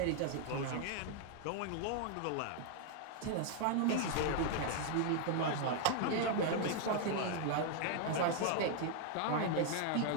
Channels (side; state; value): both; different; correlation 0.00